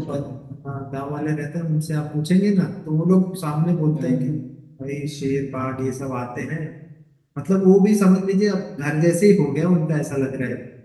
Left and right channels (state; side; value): identical; both; correlation 1.00